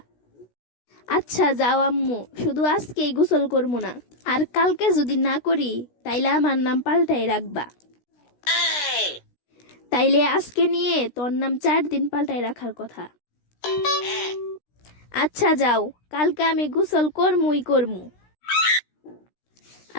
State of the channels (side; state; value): right; late; 16 ms